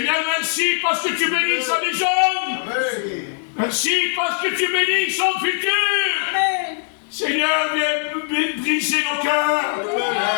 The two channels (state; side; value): silent; right; digital silence